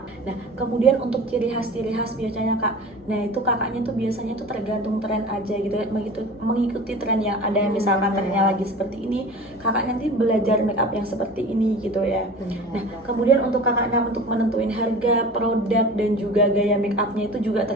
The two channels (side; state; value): both; normal; correlation 0.38